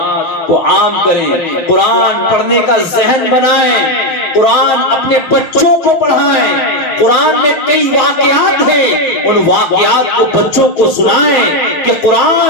کو عام کریں، قرآن پڑھنے کا ذہن بنائیں، قرآن اپنے بچوں کو پڑھائیں۔ قرآن میں کئی واقعات ہیں، ان واقعات کو بچوں کو سنائیں کہ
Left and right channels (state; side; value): late; right; 6.4 ms